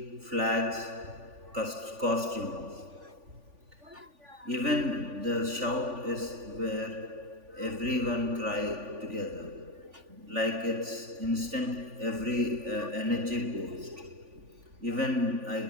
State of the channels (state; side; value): late; left; 3.5 ms